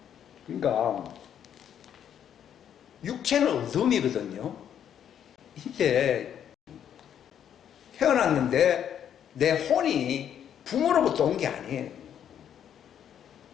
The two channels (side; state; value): right; quieter; 9.3 dB